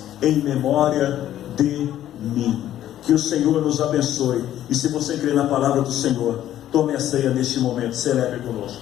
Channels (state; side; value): quieter; right; 12.2 dB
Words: em memória de mim. Que o Senhor nos abençoe, e se você crê na palavra do Senhor, tome a ceia neste momento, celebre